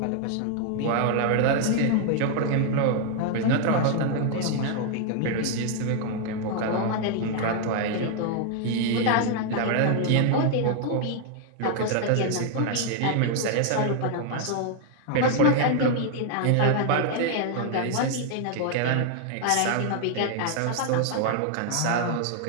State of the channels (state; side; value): different; both; correlation 0.00